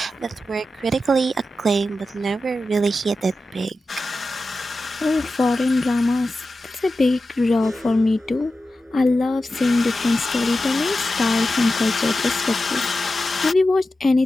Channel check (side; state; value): both; normal; correlation 0.92